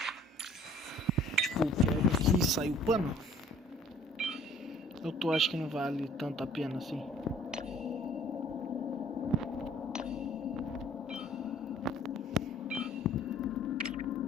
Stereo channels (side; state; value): both; normal; correlation 0.54